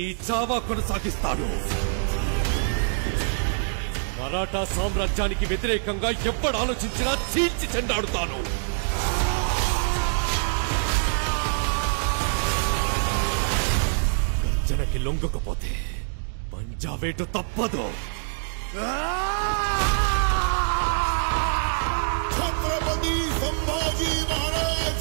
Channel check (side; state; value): left; silent; digital silence